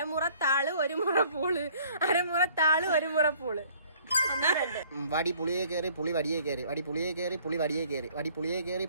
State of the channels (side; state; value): both; inverted; correlation -0.57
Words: ഒരു മുറം പൂള്, അരമുറത്താള് ഒരു മുറം പൂള്. വടി പുളിയെ കയറി പുളി വടിയെ കയറി, വടി പുളിയെ കയറി പുളി വടിയെ കയറി, വടി പുളിയെ കയറി